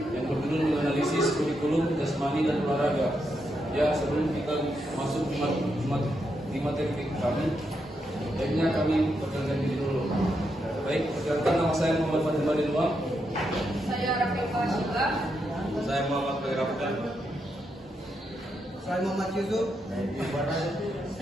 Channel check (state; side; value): normal; both; correlation 0.82